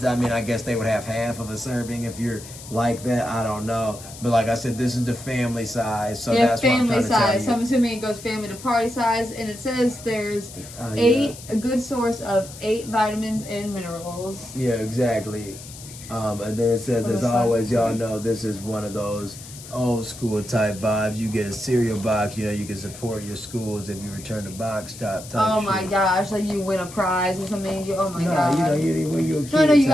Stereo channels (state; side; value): noise; left; hiss, 15 dB below the sound